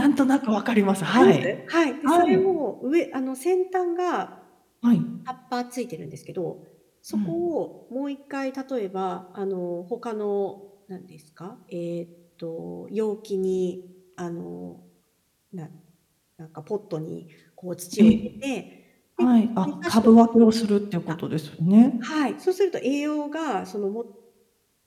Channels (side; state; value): both; identical; correlation 1.00